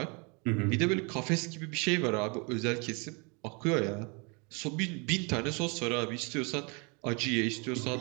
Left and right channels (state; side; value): quieter; left; 31.8 dB